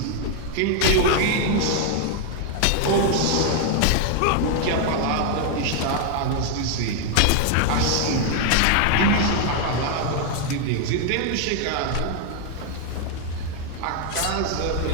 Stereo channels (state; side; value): different; both; correlation 0.00